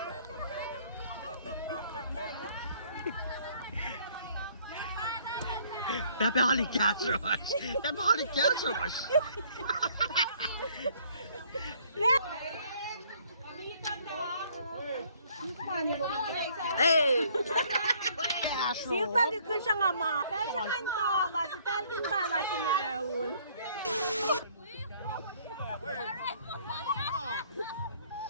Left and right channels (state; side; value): inverted; both; correlation -0.61